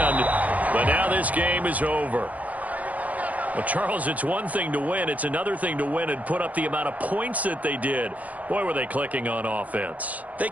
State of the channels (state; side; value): late; left; 0.074 ms